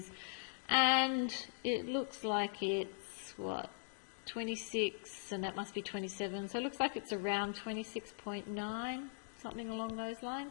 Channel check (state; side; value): silent; right; digital silence